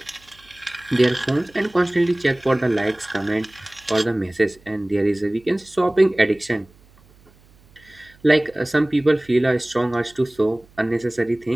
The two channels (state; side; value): noise; right; hum, 29 dB below the sound